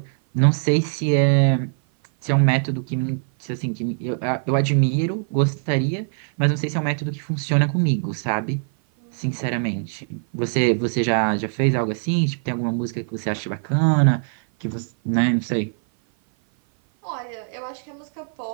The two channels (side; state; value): left; silent; 56 dB below the other